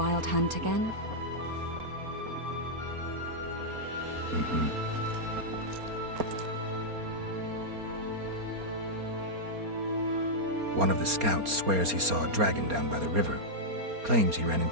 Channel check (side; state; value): left; late; 4.3 ms